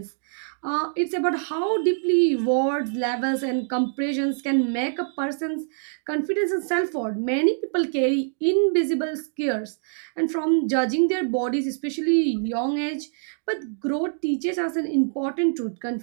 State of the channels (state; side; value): silent; left; digital silence